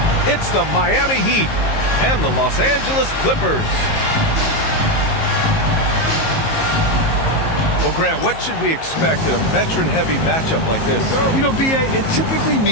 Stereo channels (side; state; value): right; late; 19 ms